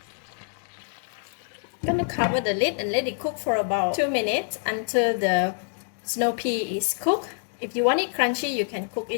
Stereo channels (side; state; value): right; silent; digital silence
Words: I'm going to cover the lid and let it cook for about 2 minutes until the snow pea is cooked. If you want it crunchy, you can cook